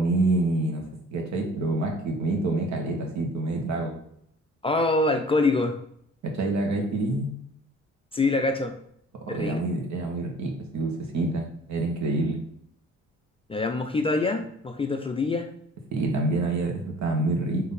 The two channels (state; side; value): normal; both; correlation 0.50